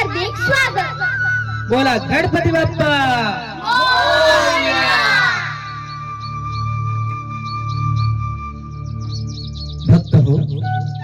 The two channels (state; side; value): identical; both; correlation 1.00